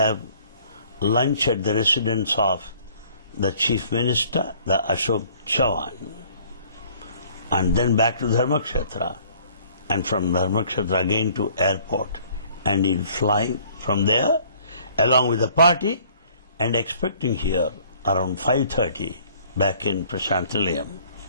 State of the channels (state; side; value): inverted; both; correlation -0.57